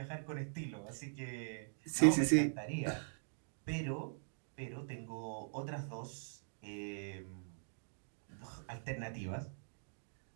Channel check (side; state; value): left; silent; digital silence